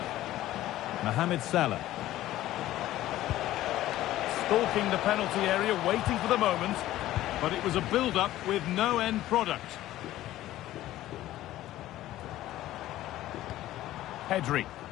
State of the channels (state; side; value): quieter; right; 14.7 dB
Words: Mohamed Salah. Stalking the penalty area, waiting for the moment. But it was a build-up with no end product. Pedri.